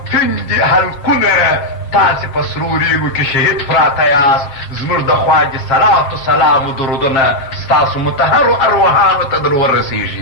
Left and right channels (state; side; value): late; right; 7.4 ms